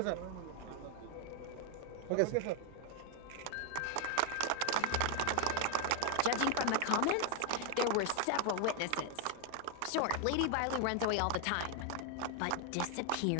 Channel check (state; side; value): different; both; correlation 0.00